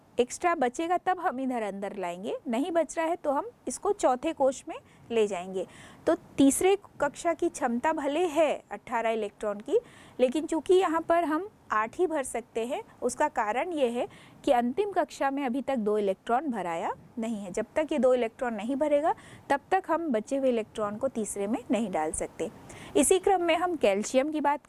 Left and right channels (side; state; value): both; identical; correlation 1.00